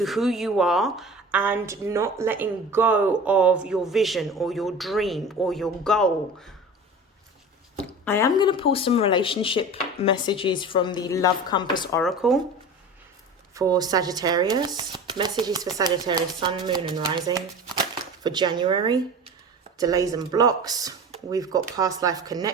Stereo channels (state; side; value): normal; both; correlation 0.36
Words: who you are and not letting go of your vision or your dream or your goal. I am going to pull some relationship messages from the Love Compass Oracle for Sagittarius. Messages for Sagittarius, Sun, Moon and Rising for January. Delays and blocks. We've got past life